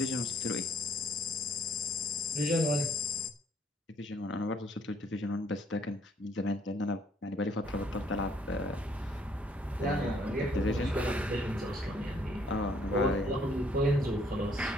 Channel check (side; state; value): both; normal; correlation 0.65